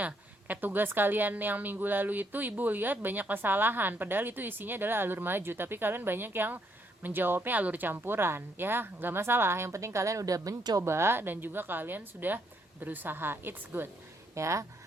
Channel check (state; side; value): normal; both; correlation 0.73